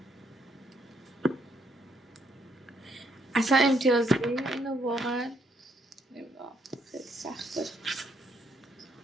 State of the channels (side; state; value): both; normal; correlation 0.72